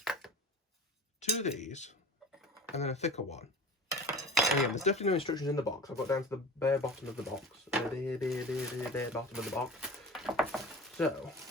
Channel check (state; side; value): normal; both; correlation 0.37